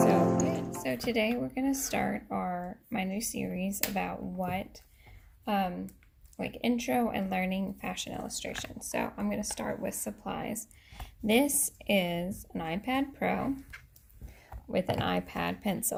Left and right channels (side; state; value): both; identical; correlation 1.00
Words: be. So today we're gonna start my new series about what like intro and learning fashion illustration. So I'm going to start with supplies. This is an iPad Pro with an iPad